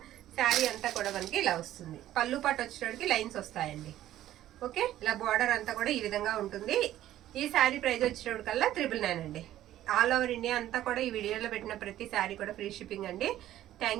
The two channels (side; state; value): left; quieter; 13.2 dB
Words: శారీ అంతా కూడా మనకి ఇలా వస్తుంది, పళ్ళు పాటు వచ్చేటప్పటికి లైన్స్ వస్తాయండి. ఓకే, ఇలా బార్డర్ అంతా కూడా ఈ విధంగా ఉంటుంది. ఈ శారీ ప్రైస్ వచ్చేటప్పటికల్లా 999 అండి. ఆల్ ఓవర్ ఇండియా అంతా కూడా ఈ వీడియోలో పెట్టిన ప్రతి శారీ కూడా ఫ్రీ షిప్పింగ్ అండి.